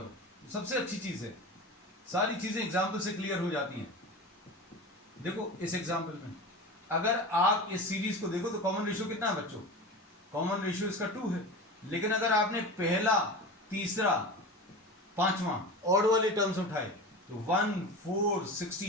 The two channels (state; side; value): normal; both; correlation 0.29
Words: सबसे अच्छी चीज है, सारी चीजें एग्जाम्पल से क्लियर हो जाती हैं। देखो इस एग्जाम्पल में अगर आप इस सीरीज को देखो तो कॉमन रेशियो कितना है बच्चों? कॉमन रेशियो इसका 2 है, लेकिन अगर आपने पहला, तीसरा, पांचवा ऑड वाले टर्म्स उठाए तो 1 4